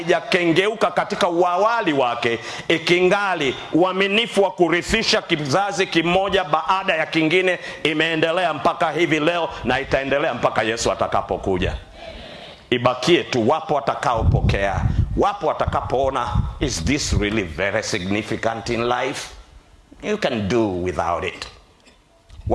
katika uawali wake, ikingali uaminifu wa kurithisha kizazi kimoja baada ya kingine imeendelea mpaka hivi leo, na itaendelea mpaka Yesu atakapokuja. Ibakie tu wapo watakaopokea, wapo watakapoona, is this really very significant in life? You can do without it.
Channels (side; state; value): both; identical; correlation 1.00